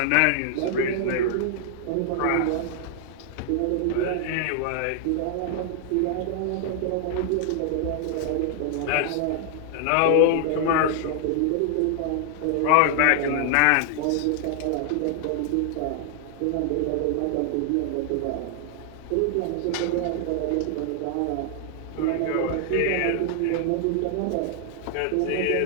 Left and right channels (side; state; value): both; different; correlation 0.00